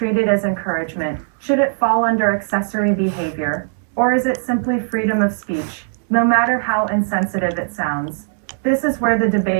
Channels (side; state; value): left; silent; digital silence